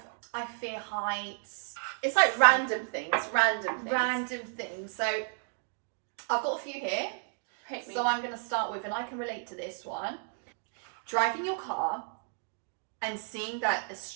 fear heights. It's like random things. Random things. So I've got a few here. Hit me. So I'm going to start with, and I can relate to this one. Driving your car and seeing that a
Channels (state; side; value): silent; left; 56 dB below the other